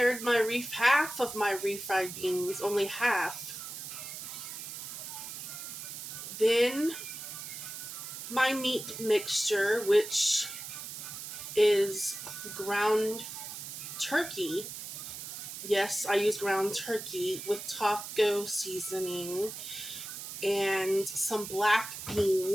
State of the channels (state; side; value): noise; right; hiss, 9 dB below the sound